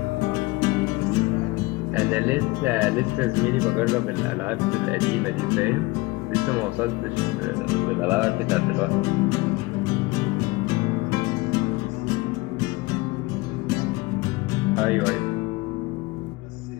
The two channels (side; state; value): right; quieter; 22.7 dB